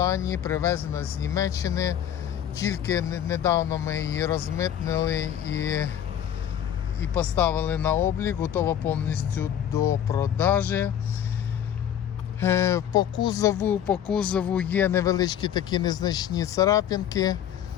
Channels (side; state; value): right; quieter; 10.0 dB